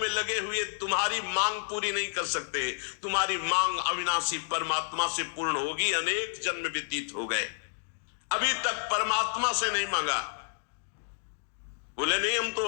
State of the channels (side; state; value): right; silent; digital silence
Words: लगे हुए तुम्हारी मांग पूरी नहीं कर सकते। तुम्हारी मांग अविनाशी परमात्मा से पूर्ण होगी। अनेक जन्म व्यतीत हो गए, अभी तक परमात्मा से नहीं मांगा। बोले नहीं, हम